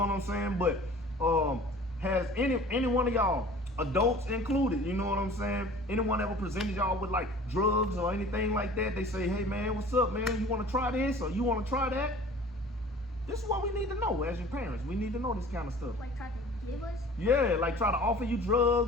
I'm saying? But has any one of y'all, adults included, you know what I'm saying? Anyone ever presented y'all with like drugs or anything like that? They say, hey man, what's up, man? You want to try this or you want to try that? This is what we need to know as your parents. We need to know this kind of stuff. Like try to give us? Yeah, like try to offer you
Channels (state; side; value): normal; both; correlation 0.45